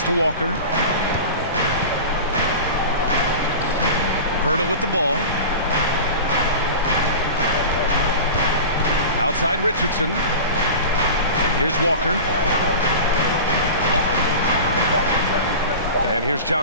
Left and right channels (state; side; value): inverted; both; correlation -0.32